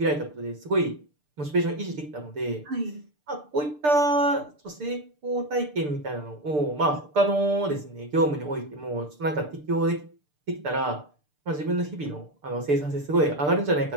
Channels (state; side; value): late; left; 6.7 ms